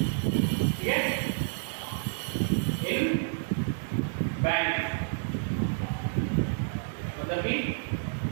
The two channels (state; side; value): silent; left; 58 dB below the other